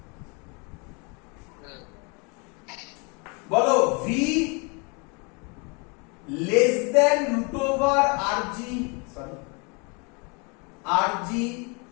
বলো V less than root over RG, sorry RG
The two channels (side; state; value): right; quieter; 32.0 dB